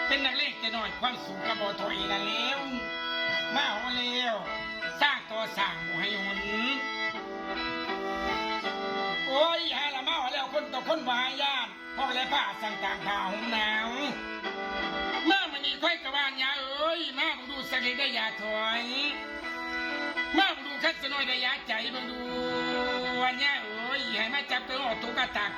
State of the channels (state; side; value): identical; both; correlation 1.00